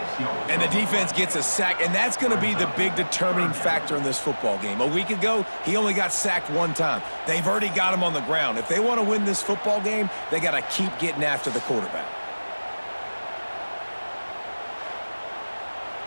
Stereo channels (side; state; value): both; inverted; correlation -1.00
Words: And the defense gets a sack, and that's going to be the big determining factor in this football game. A week ago, he only got sacked one time. They've already got him on the ground. If they want to win this football game, they got to keep getting after the quarterback.